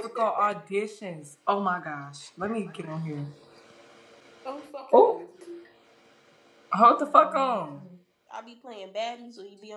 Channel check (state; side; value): identical; both; correlation 1.00